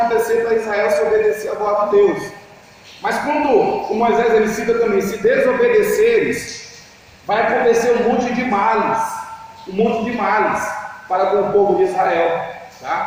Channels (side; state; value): both; identical; correlation 1.00